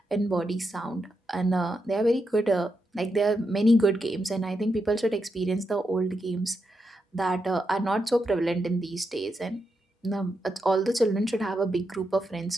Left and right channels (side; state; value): both; normal; correlation 0.85